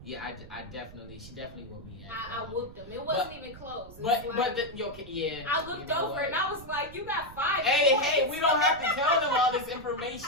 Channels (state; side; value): noise; right; rumble, 16 dB below the sound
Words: yeah, she definitely whooped me. I whooped him. It wasn't even close. Yeah. I looked over and I was like, "You got 5 points." Hey, we don't have to tell them all this